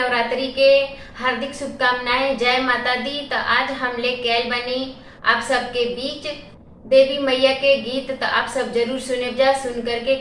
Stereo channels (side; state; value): both; identical; correlation 1.00